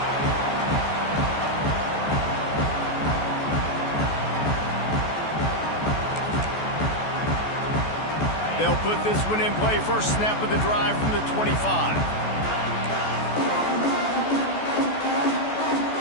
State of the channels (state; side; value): late; right; 14 ms